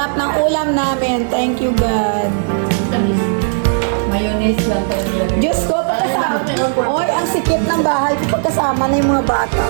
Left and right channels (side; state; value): left; silent; digital silence